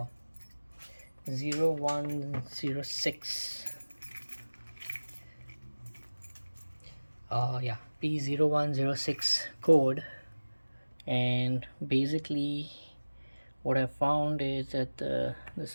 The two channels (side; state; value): both; inverted; correlation -1.00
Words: 0106 yeah, P0106 code, and basically what I found is that this